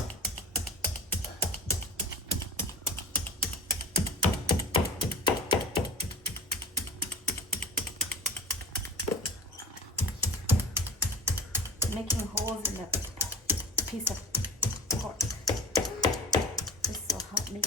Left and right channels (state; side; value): normal; both; correlation 0.35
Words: Making holes in the piece of pork. This will help